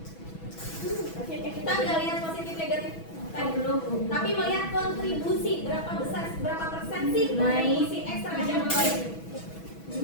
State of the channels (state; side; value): late; right; 6.1 ms